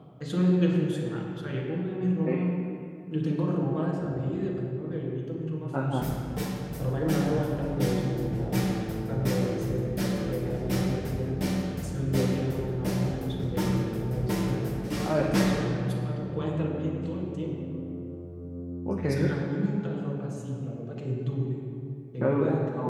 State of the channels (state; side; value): identical; both; correlation 1.00